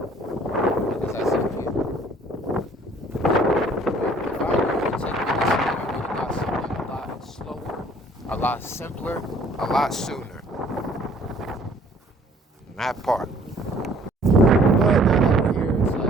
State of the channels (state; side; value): normal; both; correlation 0.56